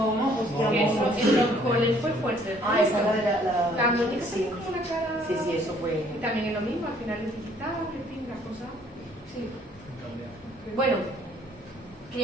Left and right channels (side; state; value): both; normal; correlation 0.61